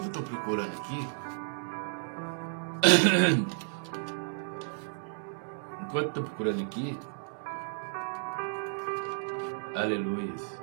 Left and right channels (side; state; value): left; silent; 56 dB below the other